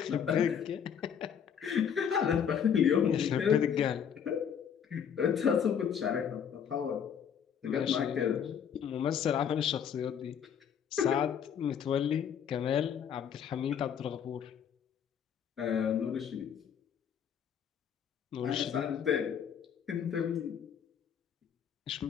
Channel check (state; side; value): quieter; right; 8.0 dB